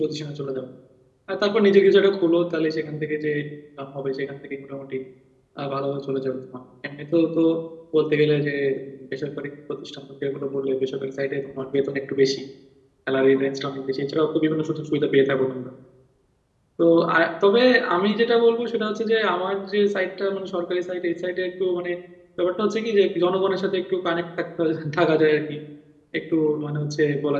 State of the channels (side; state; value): both; identical; correlation 1.00